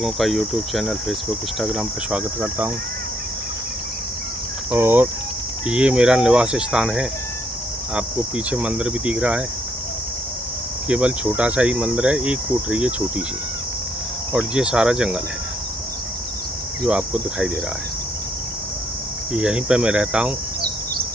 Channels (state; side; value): normal; both; correlation 0.71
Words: का यूट्यूब चैनल, फेसबुक, इंस्टाग्राम पर स्वागत करता हूं। और ये मेरा निवास स्थान है। आपको पीछे मंदिर भी दिख रहा है। केवल छोटा सा ही मंदिर है, एक कोठरी है छोटी सी, और ये सारा जंगल है जो आपको दिखाई दे रहा है। यहीं पे मैं रहता हूँ।